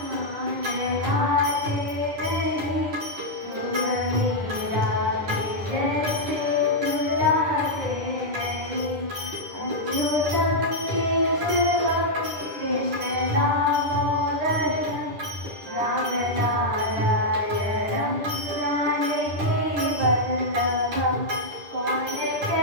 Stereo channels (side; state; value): left; late; 10 ms